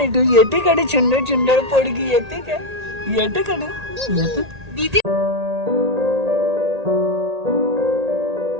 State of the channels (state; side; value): late; left; 1.8 ms